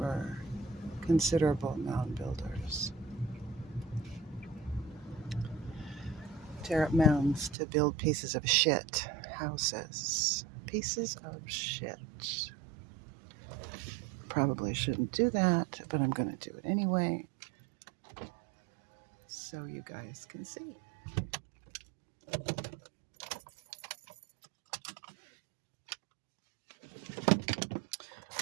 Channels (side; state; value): left; drops out; at 7.6 s